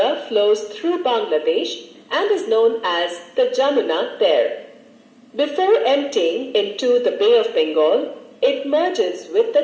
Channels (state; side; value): identical; both; correlation 1.00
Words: flows through Bangladesh and is known as the Jamuna there. Before emptying into the Bay of Bengal, it merges with